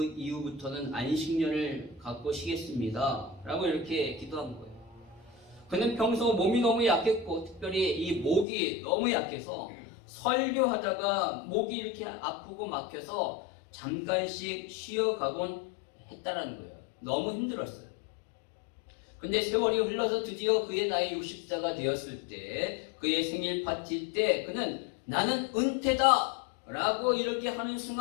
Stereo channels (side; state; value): right; drops out; at 8.5 s